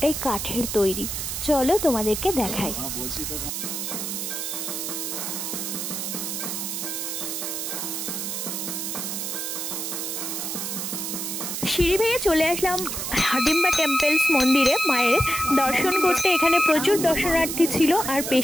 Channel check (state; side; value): noise; right; hiss, 3 dB below the sound